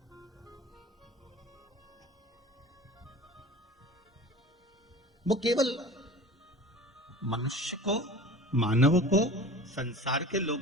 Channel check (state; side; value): normal; both; correlation 0.39